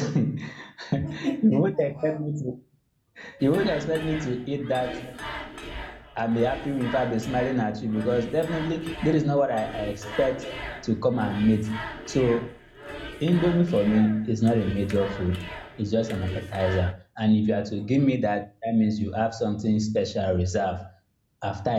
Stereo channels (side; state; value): both; identical; correlation 1.00